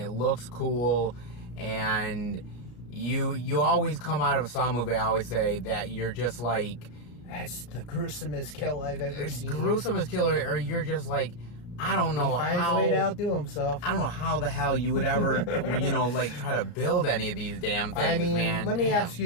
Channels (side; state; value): right; late; 34 ms